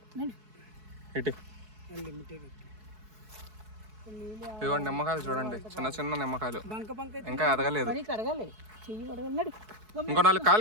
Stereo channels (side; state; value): left; late; 4.7 ms